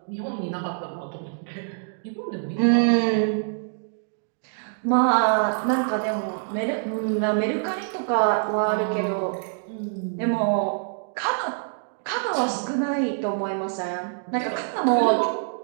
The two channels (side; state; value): left; silent; digital silence